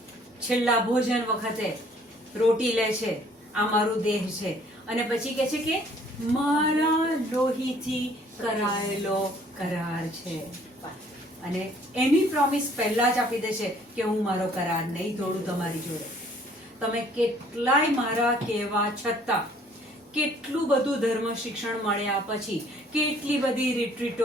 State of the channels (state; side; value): normal; both; correlation 0.59